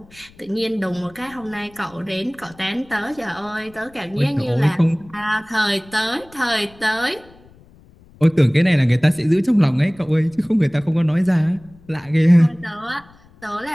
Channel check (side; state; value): left; noise; rumble, 26 dB below the sound